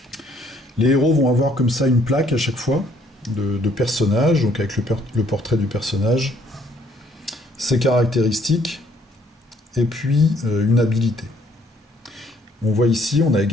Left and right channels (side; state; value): both; normal; correlation 0.64